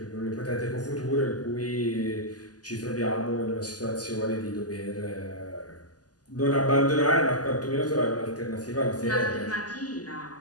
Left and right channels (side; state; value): right; late; 0.68 ms